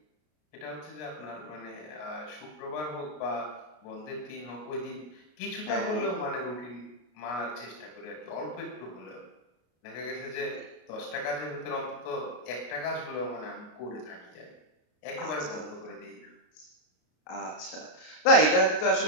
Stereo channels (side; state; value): right; late; 33 ms